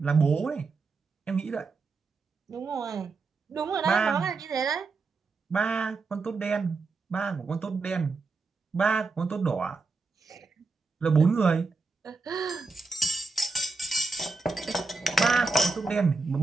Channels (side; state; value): left; quieter; 4.0 dB